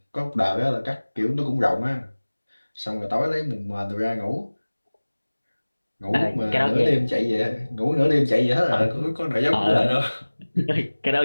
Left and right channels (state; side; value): inverted; both; correlation -1.00